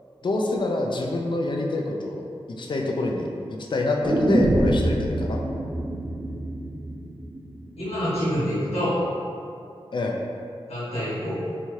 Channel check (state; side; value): normal; both; correlation 0.84